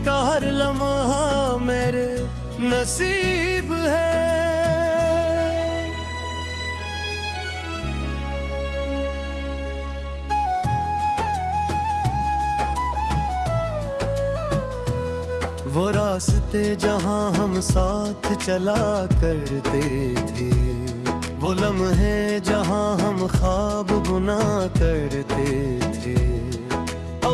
का हर लम्हा मेरे नसीब है। वो रास्ते जहाँ हम साथ चला करते थे, वो लम्हे जहाँ हम ख्वाब बुना करते थे।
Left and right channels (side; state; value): both; identical; correlation 1.00